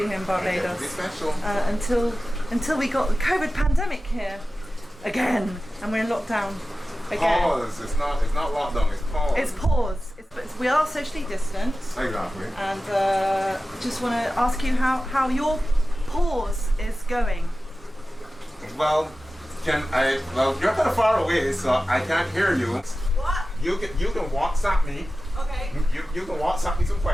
in Barbados. Special. Until we got the COVID pandemic here again, and we're in lockdown again. Pause. It's not lockdown. It's pause. It's pause. We are socially distant. Exactly. And just want to ask you how your pause is going. Well, well, you're kind of far away, so I can't hear you. What? You can WhatsApp me. Okay. You can WhatsApp me some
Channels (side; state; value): both; normal; correlation 0.95